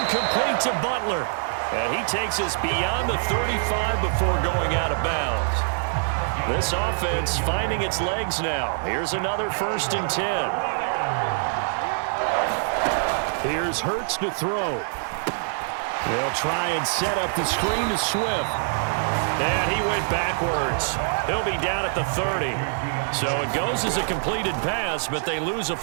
complete to Butler. And he takes us beyond the 35 before going out of bounds. This offense finding its legs now. Here's another 1st and 10. Here's Hurts to throw. They'll try and set up the screen to Swift. And he went backwards. He'll be down at the 30. So it goes as a completed pass, but they lose a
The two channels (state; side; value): silent; left; digital silence